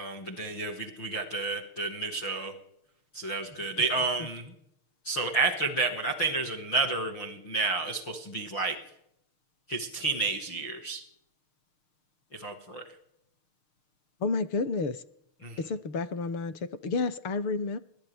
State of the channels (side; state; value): right; late; 6.5 ms